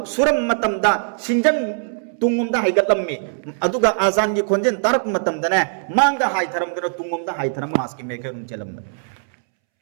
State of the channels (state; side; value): silent; left; 65 dB below the other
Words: सुरम मतमदा सिंजन तुंगमदा हाइगतलम्मी अदुगा आजान की खोंजेन तारक मतमदने मांगदा हाइथरम दनो तुंगमदा हाइथरम मास की मेकरम चलम